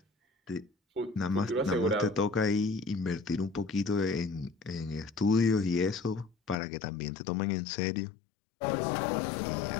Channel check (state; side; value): drops out; right; at 6.6 s